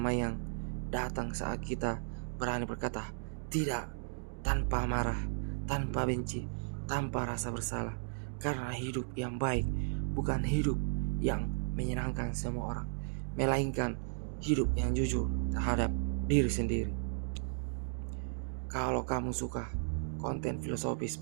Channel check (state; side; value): silent; left; digital silence